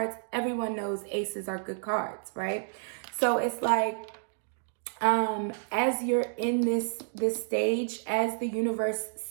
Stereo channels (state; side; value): silent; left; digital silence